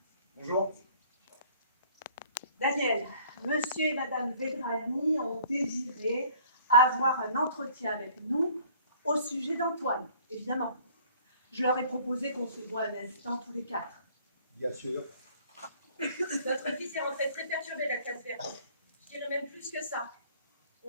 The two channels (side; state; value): both; inverted; correlation -0.55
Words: Bonjour. Daniel, monsieur et madame Vedrani ont désiré avoir un entretien avec nous au sujet d'Antoine, évidemment. Je leur ai proposé qu'on se voit un instant tous les quatre. Bien sûr. Notre fils est rentré très perturbé la classe verte. Je dirais même plus que ça.